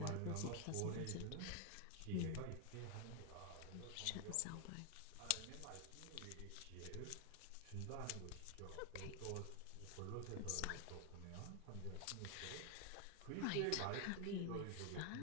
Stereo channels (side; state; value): both; different; correlation 0.01